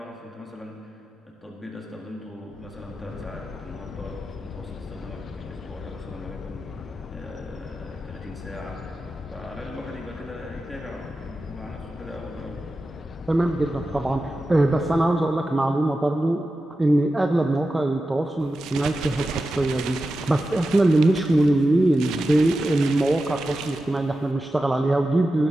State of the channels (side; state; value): both; normal; correlation 0.92